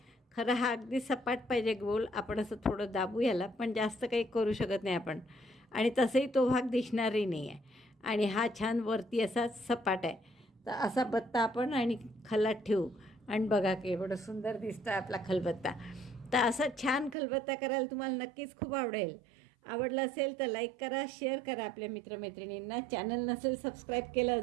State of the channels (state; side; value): drops out; left; at 17.2 s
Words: खरं हा अगदी सपाट पाहिजे गोल. आपण असं थोडं दाबू याला, पण जास्त काही करू शकत नाही आपण. आणि तसंही तो भाग दिसणारही नाही आहे. आणि हा छान वरती असा सपाट आहे. तर असा बत्ता आपण आणि खलात ठेवू आणि बघा की एवढं सुंदर दिसतं आपला खलबत्ता. तर असा छान खलबत्ता करायला तुम्हाला नक्कीच खूप आवडेल. आवडलं असेल तर लाईक करा, शेअर करा आपल्या मित्रमैत्रिणींना. चॅनल नसेल सबस्क्राईब केलं